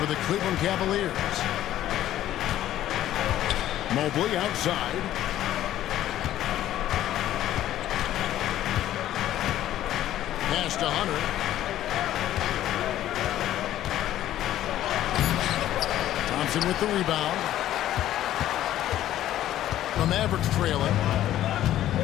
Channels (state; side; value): quieter; right; 12.9 dB